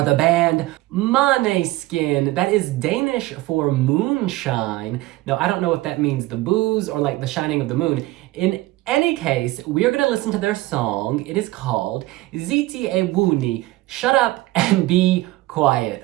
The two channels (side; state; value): left; quieter; 18.7 dB